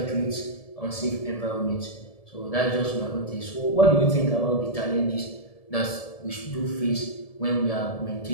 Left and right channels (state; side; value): late; right; 1.7 ms